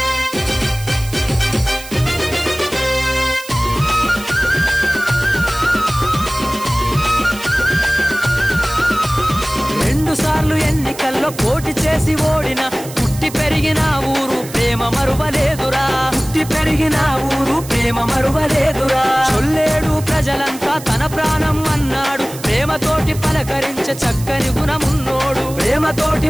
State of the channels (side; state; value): right; noise; hiss, 15 dB below the sound